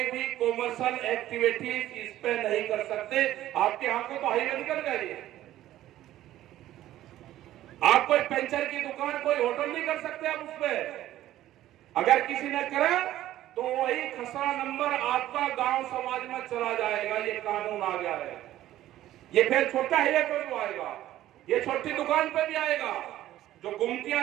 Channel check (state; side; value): quieter; left; 13.8 dB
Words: भी कॉमर्शियल एक्टिविटीज इस पे नहीं कर सकते। आपके यहाँ को तो हाईवे निकल गए। आप कोई पंचर की दुकान, कोई होटल नहीं कर सकते आप उस पे। अगर किसी ने करा तो वही खसरा नंबर आपका गांव समाज में चला जाएगा। ये कानून आ गया है। ये फिर छोटा हाईवे पे भी आएगा, ये छोटी दुकान पे भी आएगा। जो